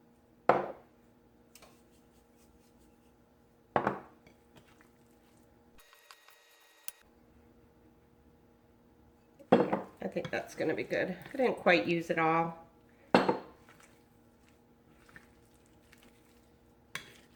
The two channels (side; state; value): both; identical; correlation 1.00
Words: I think that's gonna be good. I didn't quite use it all.